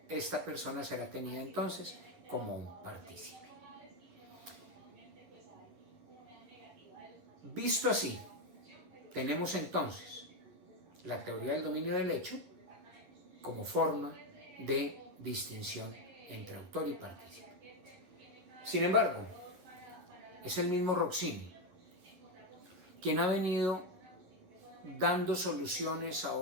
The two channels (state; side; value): late; left; 11 ms